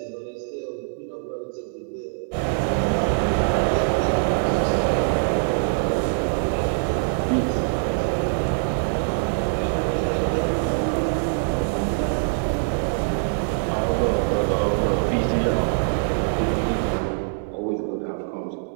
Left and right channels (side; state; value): left; silent; digital silence